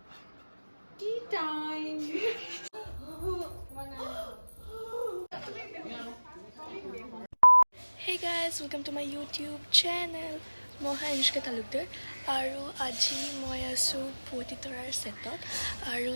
Tea time. Hey guys, welcome to my YouTube channel. মই অনুষ্কা তালুকদাৰ আৰু আজি মই আছোঁ পুৱতি তৰাৰ ছেটত আৰু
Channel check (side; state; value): both; inverted; correlation -1.00